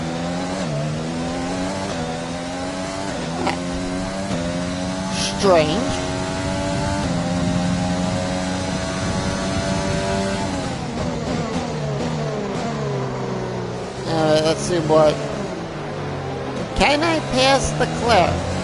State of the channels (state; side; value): identical; both; correlation 1.00